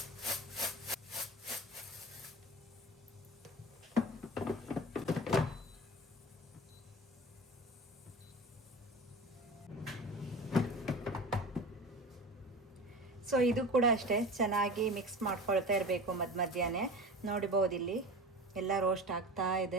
ಸೊ ಇದು ಕೂಡ ಅಷ್ಟೇ, ಚೆನ್ನಾಗಿ ಮಿಕ್ಸ್ ಮಾಡ್ಕೊಳ್ತಾ ಇರಬೇಕು ಮಧ್ಯಾಹ್ನ. ನೋಡ್ಬೋದು ಇಲ್ಲಿ ಎಲ್ಲ ರೋಸ್ಟ್ ಆಗ್ತಾ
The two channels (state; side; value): normal; both; correlation 0.33